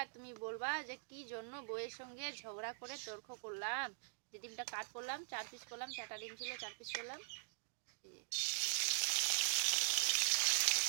আর তুমি বলবা যে কি জন্য বউয়ের সঙ্গে ঝগড়া করে তর্ক করলাম, যে ডিমটা কাট করলাম, 4 পিস করলাম, 4টা ডিম ছিল 4 পিস করলাম।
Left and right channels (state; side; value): silent; left; digital silence